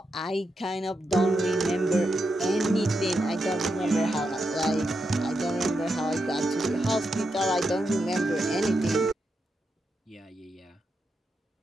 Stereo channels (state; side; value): normal; both; correlation 0.85